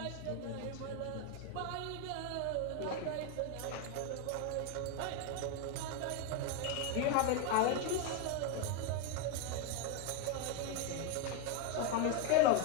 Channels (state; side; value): different; both; correlation 0.01